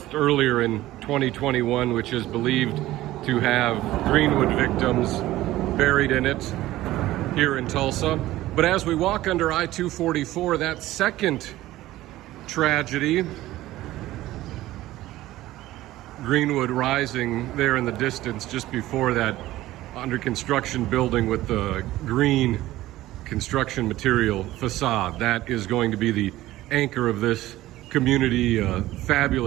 earlier in 2021, which is believed to have Greenwood victims buried in it here in Tulsa. But as we walk under I-244, that second tragedy, Greenwood Rising there in the distance, just before that under construction building with the green construction material facade, that is going to be the anchor of this community, a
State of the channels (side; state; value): left; quieter; 16.0 dB